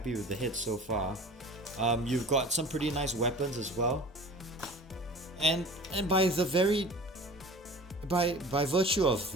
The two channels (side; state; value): both; normal; correlation 0.41